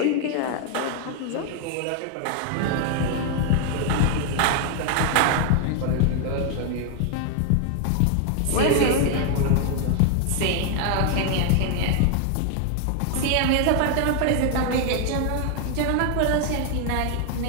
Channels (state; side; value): different; both; correlation 0.00